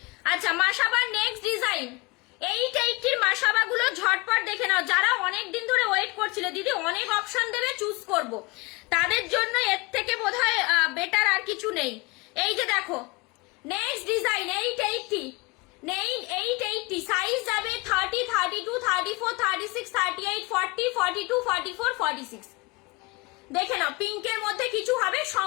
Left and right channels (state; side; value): quieter; right; 25.4 dB